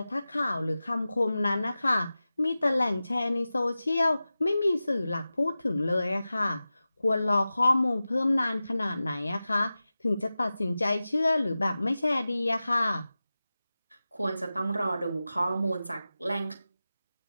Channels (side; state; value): both; inverted; correlation -0.95